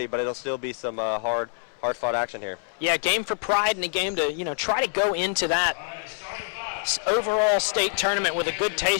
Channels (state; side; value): silent; right; 60 dB below the other